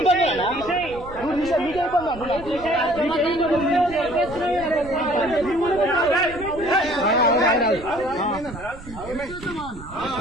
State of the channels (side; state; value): right; noise; rumble, 16 dB below the sound